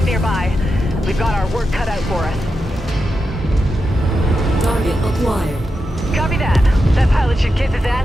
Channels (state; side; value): normal; both; correlation 0.88